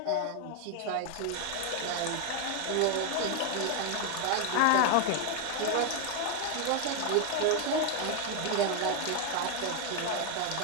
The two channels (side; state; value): both; different; correlation 0.00